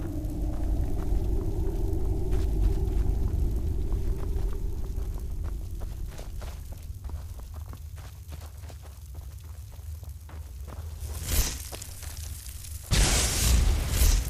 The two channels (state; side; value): identical; both; correlation 1.00